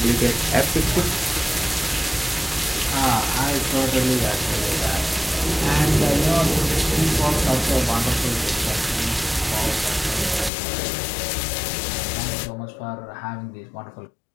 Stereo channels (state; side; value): drops out; right; at 10.5 s